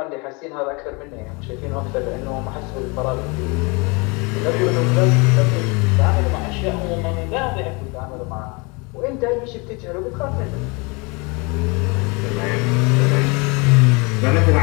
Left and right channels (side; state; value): right; quieter; 29.1 dB